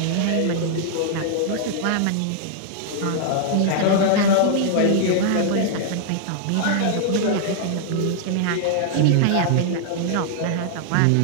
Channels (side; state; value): both; different; correlation -0.01